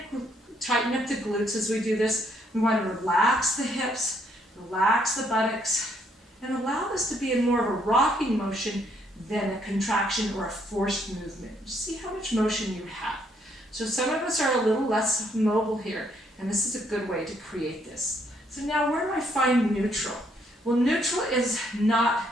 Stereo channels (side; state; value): both; normal; correlation 0.71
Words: tighten up the glutes as we do this. We want to relax the hips, relax the buttocks, and allow this to be in more of a rocking motion than a contraction or a forced movement. See how much motion you have. So some of us are a little less mobile here, and this is a good way to create this. So now where do I find neutral? Well, neutral is